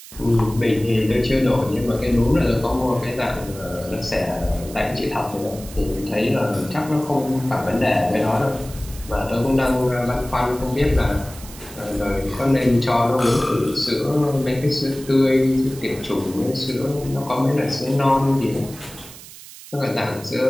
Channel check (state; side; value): noise; right; hiss, 17 dB below the sound